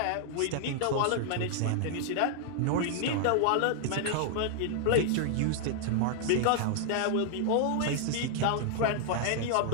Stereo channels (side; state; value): both; different; correlation -0.01